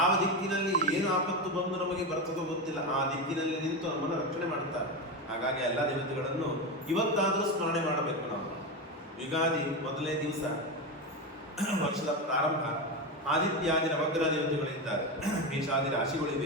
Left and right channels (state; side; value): normal; both; correlation 0.16